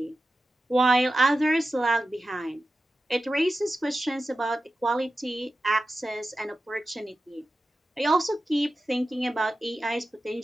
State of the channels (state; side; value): normal; both; correlation 0.93